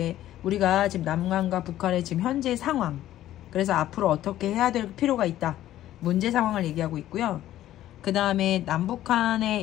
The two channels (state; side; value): quieter; right; 13.3 dB